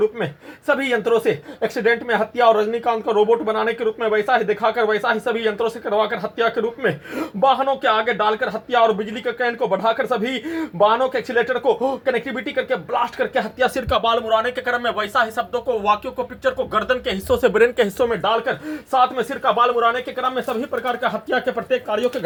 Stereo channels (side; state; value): both; identical; correlation 1.00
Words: में सभी यंत्रों से एक्सीडेंट में हत्या और रजनीकांत का रोबोट बनाने के रूप में वैसा ही दिखाकर वैसा ही सभी यंत्रों से करवाकर हत्या के रूप में वाहनों के आगे डालकर हत्या और बिजली के करंट को बढ़ाकर सभी वाहनों के एक्सीलेटर को कनेक्टिविटी करके ब्लास्ट करके हत्या सिर का बाल मुड़ाने के क्रम में वैसा ही शब्दों को वाक्यों को पिक्चर को गर्दन के हिस्सों से ब्रेन के हिस्सों में डालकर साथ में सिर का बाल मुड़ाने के क्रम में सभी प्रकार का हत्या के प्रत्येक कार्यों के